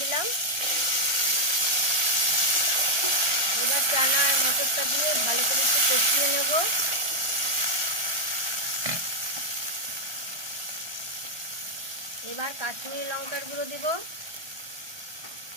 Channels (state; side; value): late; left; 1.3 ms